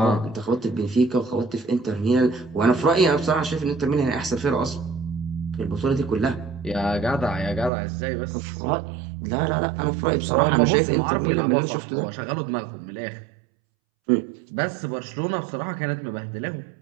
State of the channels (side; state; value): left; drops out; at 7.7 s